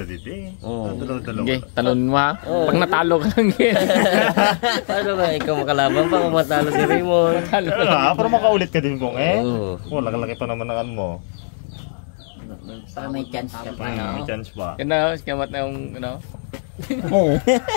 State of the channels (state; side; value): silent; right; digital silence